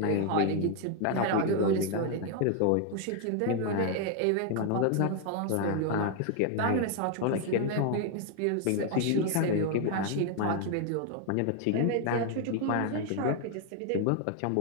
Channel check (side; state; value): both; different; correlation 0.01